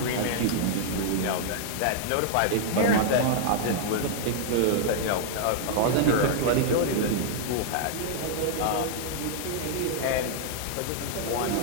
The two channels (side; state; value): both; different; correlation -0.01